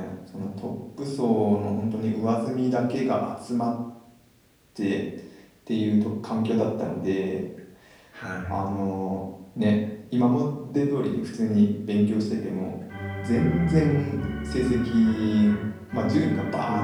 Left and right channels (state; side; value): identical; both; correlation 1.00